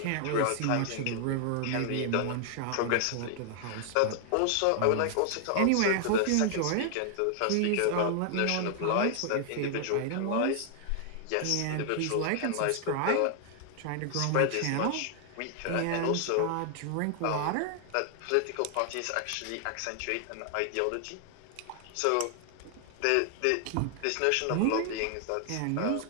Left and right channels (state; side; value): different; both; correlation 0.00